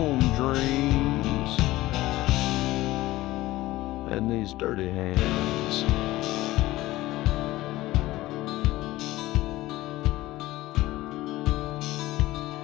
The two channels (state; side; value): quieter; right; 17.3 dB